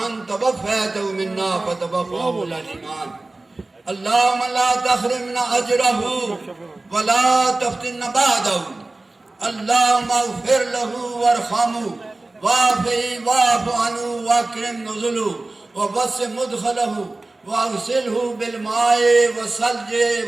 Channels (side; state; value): left; quieter; 3.0 dB